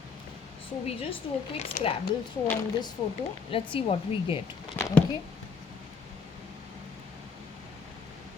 So we just do a quick Scrabble throw on this photo. Let's see what we get. Okay.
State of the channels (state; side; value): quieter; right; 5.5 dB